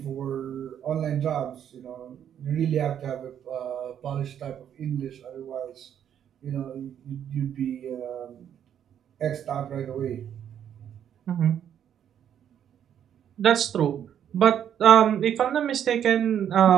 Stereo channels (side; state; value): left; quieter; 9.5 dB